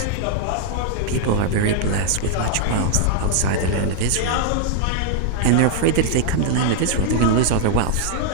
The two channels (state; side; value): different; both; correlation -0.01